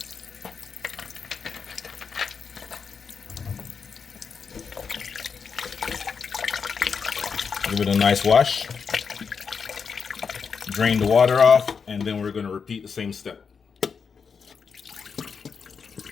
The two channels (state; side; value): quieter; right; 5.9 dB